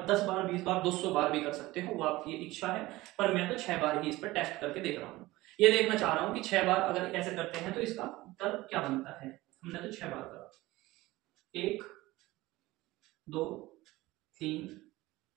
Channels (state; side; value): quieter; left; 18.9 dB